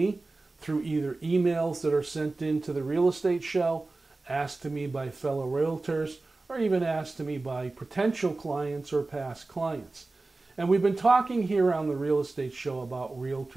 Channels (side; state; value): left; quieter; 3.3 dB